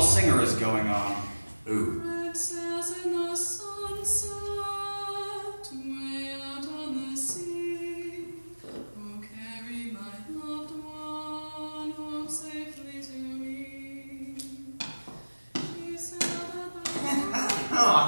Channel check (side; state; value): both; inverted; correlation -1.00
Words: singer is going on. Ooh.